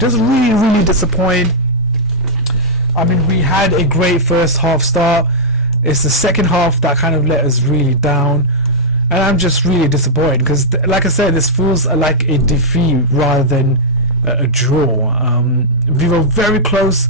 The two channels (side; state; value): both; normal; correlation -0.09